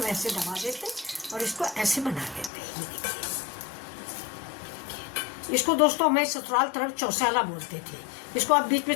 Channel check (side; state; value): right; drops out; at 2.5 s